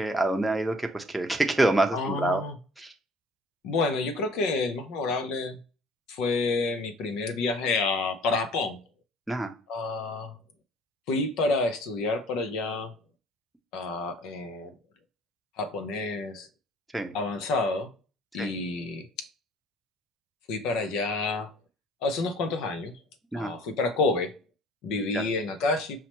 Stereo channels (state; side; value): normal; both; correlation 0.52